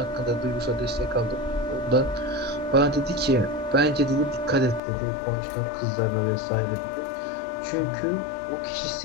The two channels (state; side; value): drops out; right; at 4.8 s